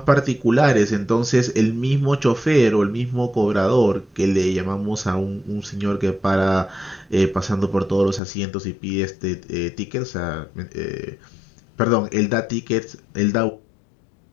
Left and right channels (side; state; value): right; drops out; at 8.2 s